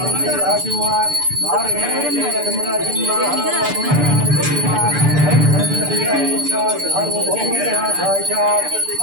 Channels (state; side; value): late; left; 6.8 ms